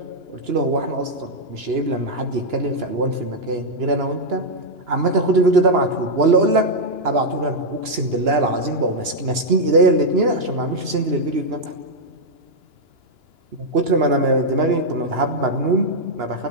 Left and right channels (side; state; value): left; late; 2.9 ms